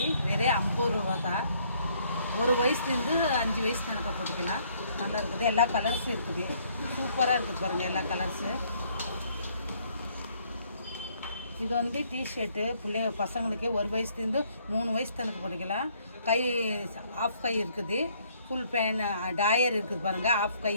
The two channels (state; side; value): inverted; both; correlation -0.66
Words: வெறும் 50 ரூபா தான். 1 வயசுலேருந்து 5 வயசு கணக்காக போட்டுக்கலாம். நல்லா இருக்குது. எல்லா கலர்ஸும் இருக்குது. சூப்பராக இருக்குது பாருங்கள் எல்லா கலர்ஸு. இது வந்து டிஷர்ட்டு பசங்களுக்கு 1 வயசுலேருந்து 3 வயசு கணக்கு போட்டுக்கலாம். கை ஆஃப் கை இருக்குது. ஃபுல் பேன் டாயர் இருக்குது பாருங்கள். ஆஃப் கை